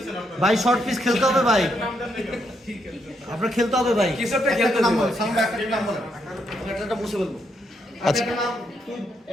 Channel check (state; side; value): normal; both; correlation 0.77